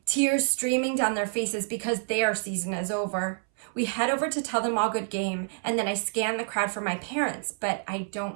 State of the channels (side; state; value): left; silent; 59 dB below the other